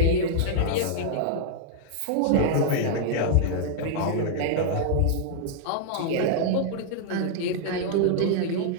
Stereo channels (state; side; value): different; both; correlation -0.01